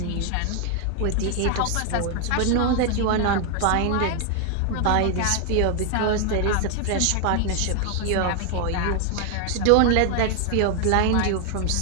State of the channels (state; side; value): different; both; correlation 0.00